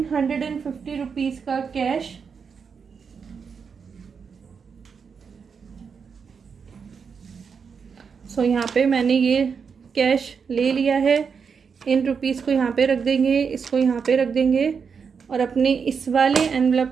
रुपीज़ का कैश। सो यहाँ पे मैंने ये कैश ले लिया है। इन रुपीज़ को यहाँ पे रख देंगे, इसको यहाँ पे रख देंगे और अपने इस वाले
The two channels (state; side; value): quieter; left; 6.0 dB